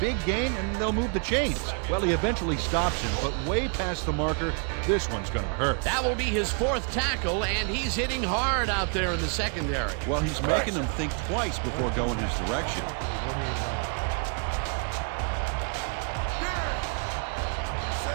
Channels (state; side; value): quieter; left; 39.0 dB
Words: gain, and they'll move the chains. Well, he eventually stops him, but way past the marker. This one's going to hurt. That will be his 4th tackle, and he's hitting hard out there in the secondary. Well, he's making them think twice before going his direction. 48 yards.